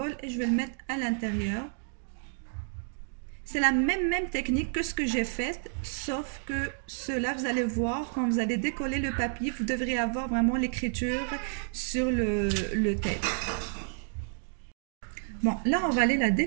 et je vais le mettre à l'intérieur. C'est la même technique que ce que j'ai fait, sauf que cela, vous allez voir, quand vous allez décoller le papier, vous devrez avoir vraiment l'écriture sur le tape. Bon, là, on va aller la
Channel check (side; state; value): left; silent; digital silence